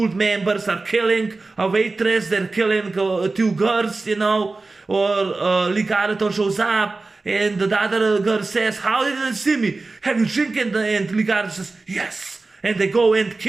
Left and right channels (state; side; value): quieter; left; 3.6 dB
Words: members are killing a waitress. They're killing two girls, you know, or Lee Garrett shows up. And the other girl says, "How did you see me? Have you drinking?" And Lee Garrett says, "Yes." And they go and